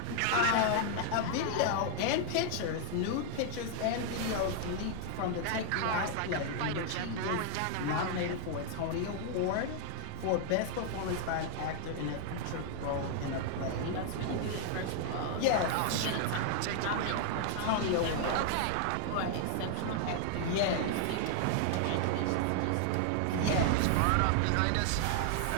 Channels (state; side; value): different; both; correlation 0.00